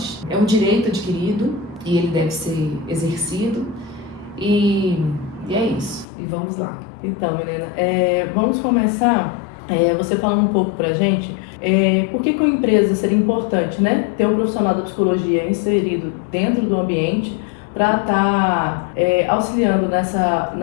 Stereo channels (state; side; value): drops out; right; at 6.1 s